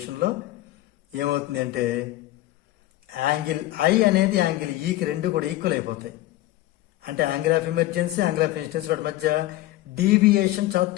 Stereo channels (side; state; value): right; quieter; 16.2 dB